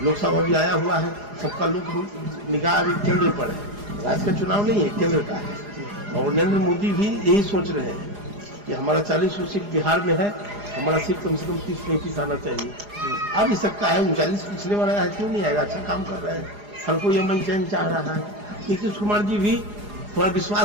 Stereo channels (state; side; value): late; left; 4.9 ms